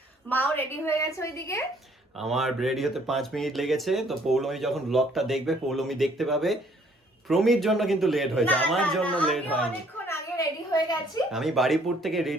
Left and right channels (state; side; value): normal; both; correlation 0.62